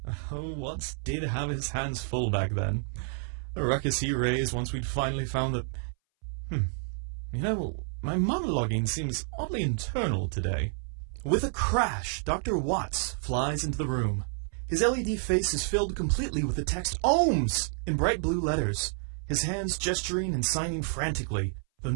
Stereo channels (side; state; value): left; silent; 58 dB below the other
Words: Oh, Watts did have his hands full back then. The ruckus he raised once we'd finally found that... my monologuing seems oddly internal today. With a crash, Dr. Watts flies into the room. His LED face is filled completely with the text OHMS in bright blue letters, his hands gesturing and signing frantically, though